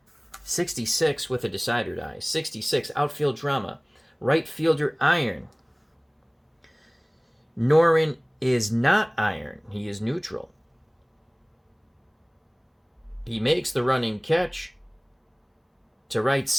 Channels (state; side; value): identical; both; correlation 1.00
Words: 66 with a decider die. 66, outfield drama. Right fielder iron. Norin is not iron. He is neutral. He makes the running catch to right